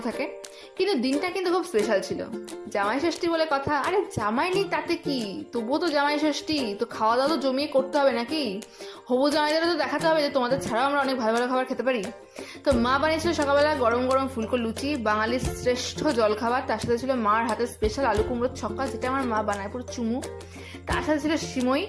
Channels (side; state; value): both; identical; correlation 1.00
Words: থাকে, কিন্তু দিনটা কিন্তু খুব স্পেশাল ছিল। জামাই ষষ্ঠী বলে কথা। আরে জামাই নেই তাতে কি, তবুও তো জামাই ষষ্ঠী, তো খাওয়া দাওয়া তো জমিয়ে করতে হবে নাকি। হবু জামাইদেরও তো দেখাতে হবে যে তোমাদের ছাড়াও আমরা অনেক ভালো ভালো খাবার খেতে পারি। তো মা বানিয়েছিল সকালবেলা গরম গরম ফুলকো লুচি, বাঙালির শ্রেষ্ঠ জলখাবার। তার সাথে ছিল মার হাতের স্পেশাল আলু কুমড়োর ছক্কা, যেটা আমার মা বানায় পুরো চুমু। তার সাথে ছিল সিমই